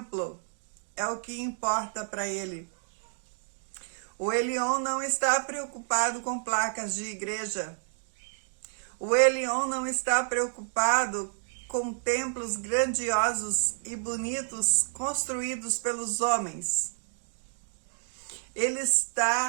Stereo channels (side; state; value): left; silent; digital silence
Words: é o que importa para ele. O Elion não está preocupado com placas de igreja. O Elion não está preocupado com templos grandiosos e bonitos construídos pelos homens.